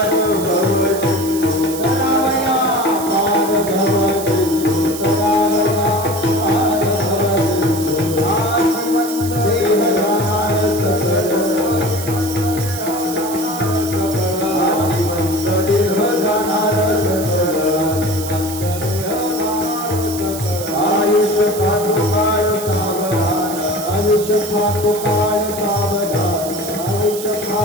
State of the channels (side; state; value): right; noise; hiss, 10 dB below the sound